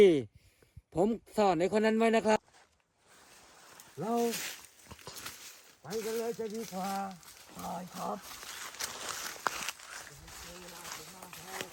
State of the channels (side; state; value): both; identical; correlation 1.00